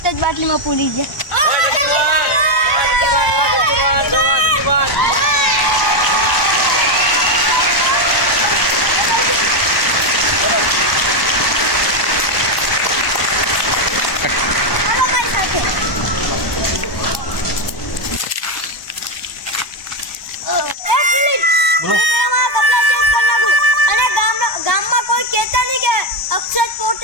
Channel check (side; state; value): right; late; 1.1 ms